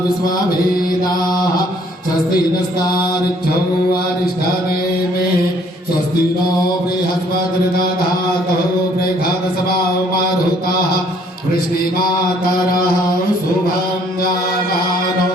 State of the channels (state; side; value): normal; both; correlation 0.62